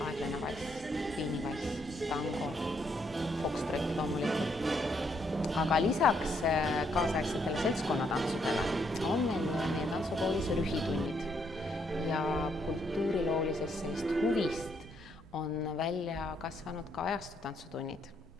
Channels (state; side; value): normal; both; correlation 0.73